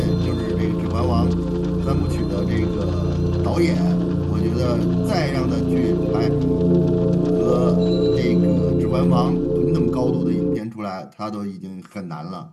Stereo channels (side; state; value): both; identical; correlation 1.00